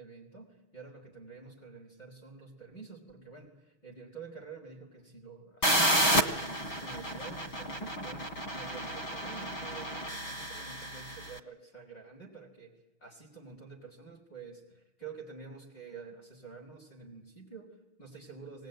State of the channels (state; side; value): late; right; 6.0 ms